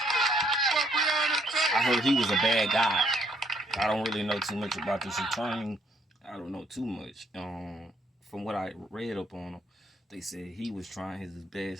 for Brianna Taylor. I heard he was a bad guy. I don't really know too much about this attorney. I don't know too much. From what I read up on him, they said he was trying his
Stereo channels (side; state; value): both; normal; correlation 0.68